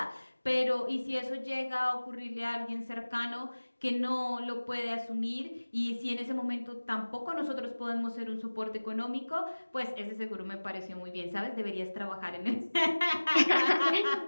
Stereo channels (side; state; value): both; inverted; correlation -1.00